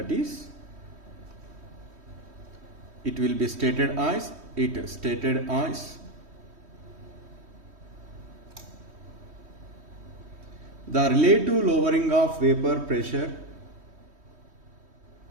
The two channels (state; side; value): late; left; 3.1 ms